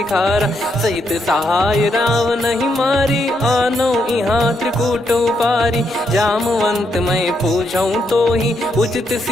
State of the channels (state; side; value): normal; both; correlation 0.78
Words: खारा सहित सहाय राव नहीं मारी आनो इहाँ त्रिकूट उपारी जामवंत मैं पूछऊँ तो ही उचित